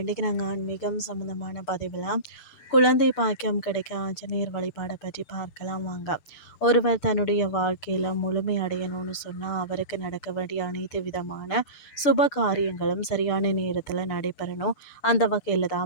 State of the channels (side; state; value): right; late; 6.8 ms